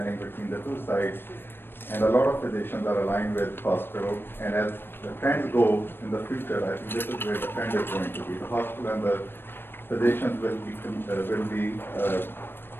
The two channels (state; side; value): late; right; 0.10 ms